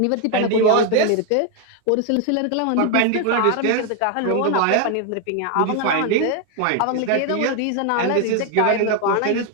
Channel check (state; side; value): different; both; correlation 0.01